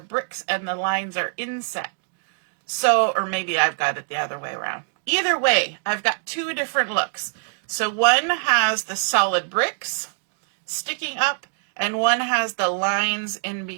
bricks and the lines are inset. So, or maybe I've got it the other way around. Either way, I've got 2 different looks. So one has the solid bricks sticking up, and one has the lines in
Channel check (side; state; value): left; silent; digital silence